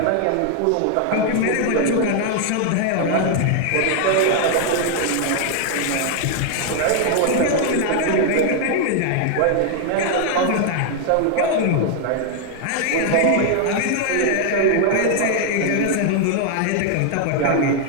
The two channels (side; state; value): both; different; correlation 0.00